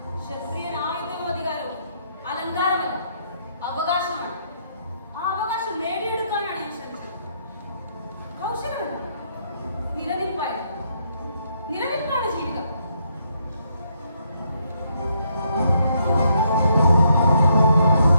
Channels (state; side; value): inverted; both; correlation -0.74